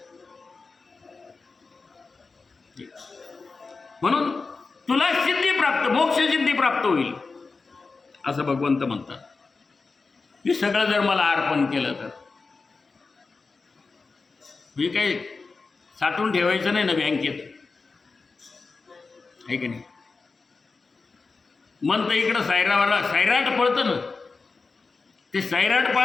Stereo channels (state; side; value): quieter; right; 4.2 dB